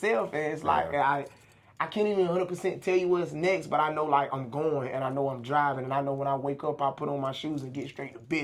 And it's like I can't even 100% tell you what's next, but I know like I'm going and I know I'm driving and I know when I wake up I put on my shoes and get straight to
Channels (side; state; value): both; identical; correlation 1.00